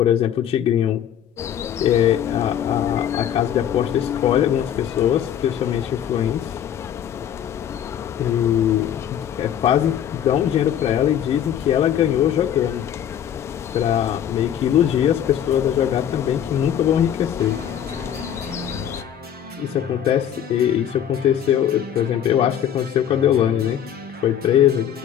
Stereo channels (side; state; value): right; quieter; 9.8 dB